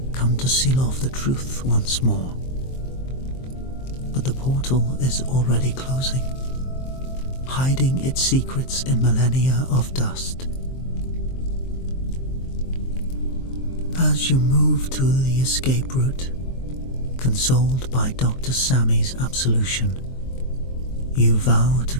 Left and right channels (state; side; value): late; right; 23 ms